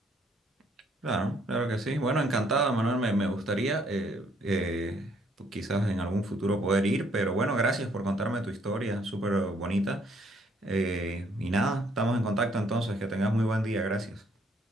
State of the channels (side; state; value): both; normal; correlation 0.66